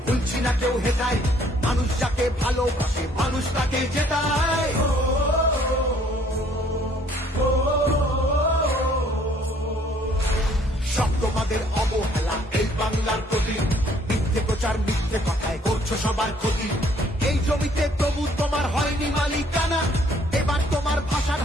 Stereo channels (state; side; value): normal; both; correlation 0.61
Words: ভুলছি না কেউ হেটায়, মানুষ যাকে ভালোবাসে মানুষ তাকে জেতায়। সব তোমাদের অবহেলা এই বাংলার প্রতি, মিথ্যে প্রচার মিথ্যে কথায় করছো সবার ক্ষতি। এই জমিতে তবু তোমার হয়নি মালিকানা, এবার তোমার ভাষার